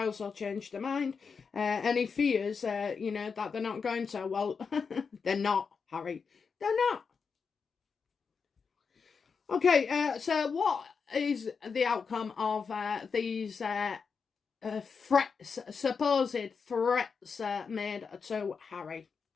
will change their mind. And he fears, you know, that they're not going to. Well, they're not, Harry. They're not. Okay, so what is the outcome of these threats, supposed threats made to Harry?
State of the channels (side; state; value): right; quieter; 5.6 dB